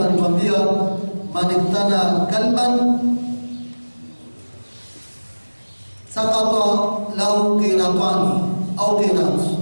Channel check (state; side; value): inverted; both; correlation -1.00